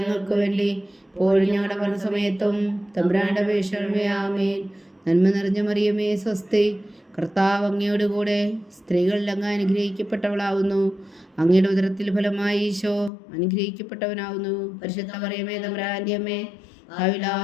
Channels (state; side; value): drops out; right; at 13.1 s